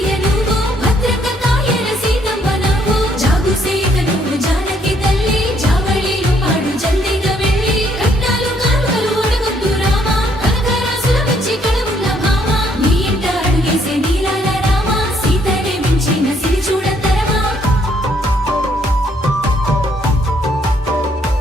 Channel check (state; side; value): normal; both; correlation 0.68